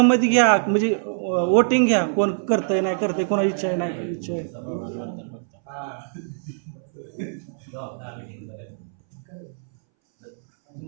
घ्या, म्हणजे वोटिंग घ्या, कोण करतंय नाही करतंय, कोणाची इच्छा आहे नाही इच्छा आहे.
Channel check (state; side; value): silent; left; 62 dB below the other